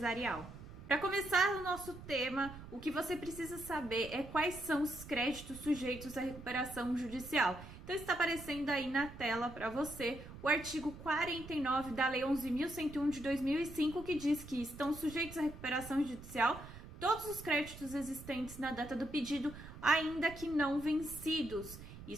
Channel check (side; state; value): right; noise; rumble, 14 dB below the sound